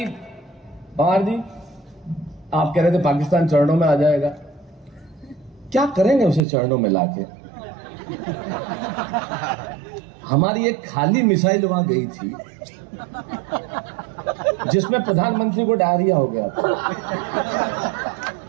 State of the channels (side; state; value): left; drops out; at 6.4 s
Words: पवार जी, आप कह रहे थे पाकिस्तान चरणों में आ जाएगा, क्या करेंगे उसे चरणों में लाके? हमारी एक खाली मिसाइल वहां गई थी जिसमें प्रधानमंत्री को डायरिया हो गया था